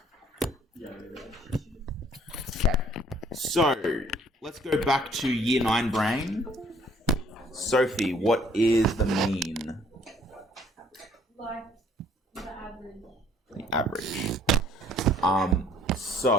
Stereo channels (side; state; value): both; normal; correlation 0.60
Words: Okay. So, let's go back to year 9 brain. Sophie, what is the mean? Like the average. The average.